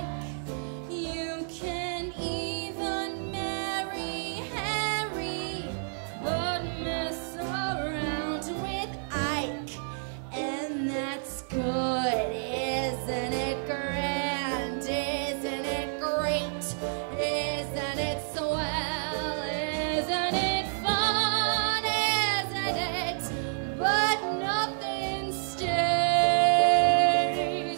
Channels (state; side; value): silent; left; digital silence